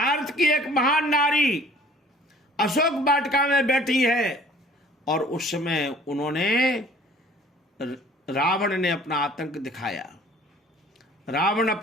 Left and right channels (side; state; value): both; normal; correlation 0.53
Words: की एक महान नारी अशोक वाटिका में बैठी है और उस समय उन्होंने, रावण ने अपना आतंक दिखाया। रावण